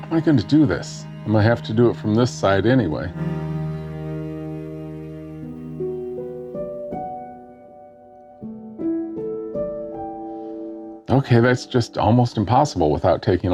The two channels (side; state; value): both; identical; correlation 1.00